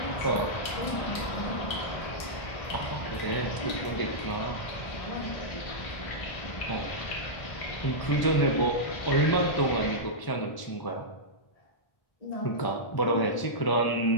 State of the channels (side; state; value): right; late; 1.0 ms